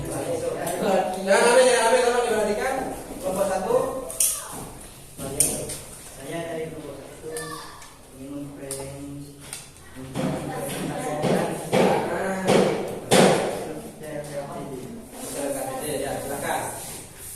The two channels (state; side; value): identical; both; correlation 1.00